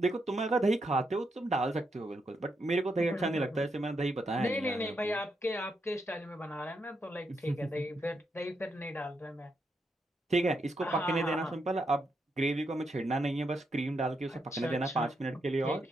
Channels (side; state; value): both; normal; correlation 0.81